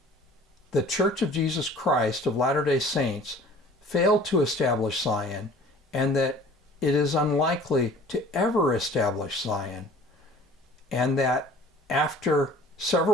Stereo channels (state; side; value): normal; both; correlation 0.49